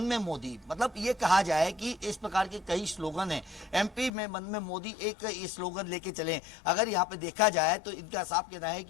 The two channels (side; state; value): right; drops out; at 4.1 s